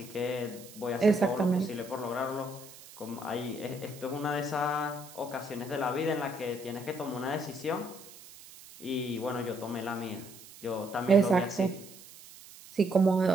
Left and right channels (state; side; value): noise; right; hiss, 18 dB below the sound